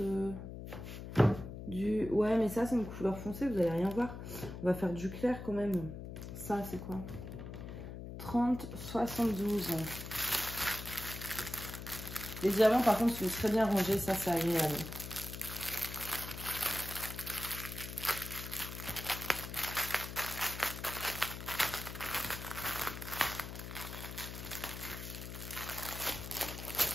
du... Ouais, mais ça, c'est une couleur foncée, vous allez rien voir. On va faire du clair quand même. Ça, c'est quoi? 30,72. Les diamants, par contre, sont très bien rangés, ça, c'est agréable.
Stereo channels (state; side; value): noise; left; hum, 9 dB below the sound